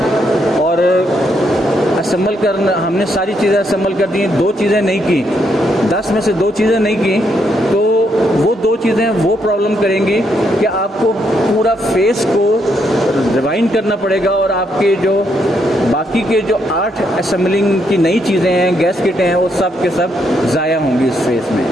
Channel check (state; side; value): normal; both; correlation 0.76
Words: और असेंबल करना हमने सारी चीज़ें असेंबल कर दी, 2 चीज़ें नहीं की, 10 में से 2 चीज़ें नहीं की, तो वो 2 चीज़ें वो प्रॉब्लम करेंगी कि आपको पूरा फेस को रिवाइंड करना पड़ेगा और आपके जो बाकी के जो 8 असेंबलिंग की नई चीज़ें हैं, गैस किटें हैं, वो सब के सब ज़ाया होंगी इस फेस में।